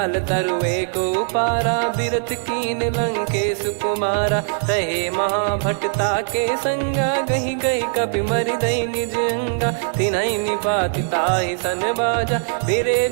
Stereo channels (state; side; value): silent; left; digital silence